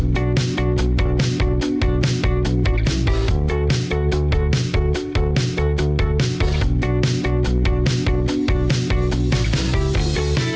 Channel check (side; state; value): both; identical; correlation 1.00